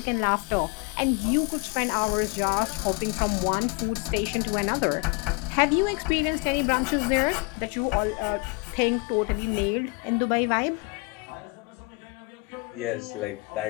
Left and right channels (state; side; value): quieter; right; 28.4 dB